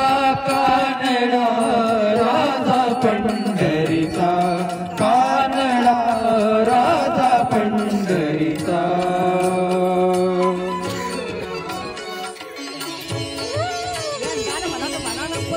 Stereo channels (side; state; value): both; identical; correlation 1.00